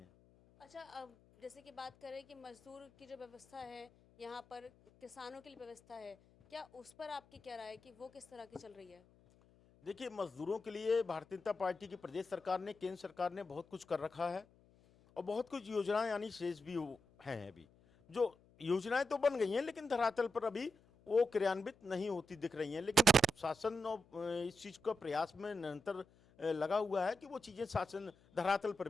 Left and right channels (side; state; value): left; noise; hum, 28 dB below the sound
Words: अच्छा, अब जैसे कि बात करें कि मजदूर की जो व्यवस्था है, यहाँ पर किसानों के लिए व्यवस्था है, क्या उस पर आपकी क्या राय है कि वो किस तरह की चल रही है? देखिए, मजदूरों के लिए भारतीय जनता पार्टी की प्रदेश सरकार ने, केंद्र सरकार ने बहुत कुछ कर रखा है, और बहुत कुछ योजनाएं यानी शेष भी हैं। अभी जो योजनाएं तो बन गई हैं, लेकिन धरातल पर अभी वो क्रियान्वित नहीं होती दिख रही हैं। लेकिन शासन और इस चीज़ का प्रयास में निरंतर लगा हुआ है कि वो चीज़ें शासन धरातल पर